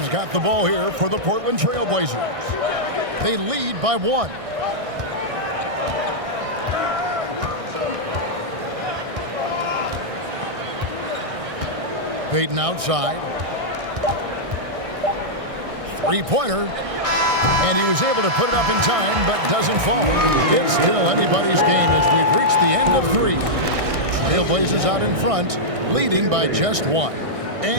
got the ball here for the Portland Trail Blazers. They lead by 1. Payton outside. Three-pointer. And he was able to put it up in time, but doesn't fall. It's still anybody's game as we've reached the end of 3. Trailblazers out in front, leading by just 1.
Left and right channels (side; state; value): left; late; 1.6 ms